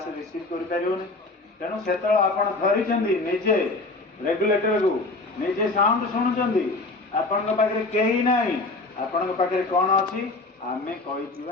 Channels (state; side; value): quieter; right; 3.2 dB